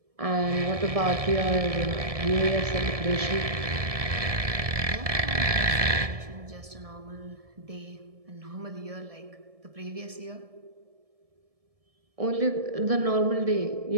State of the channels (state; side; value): late; left; 1.7 ms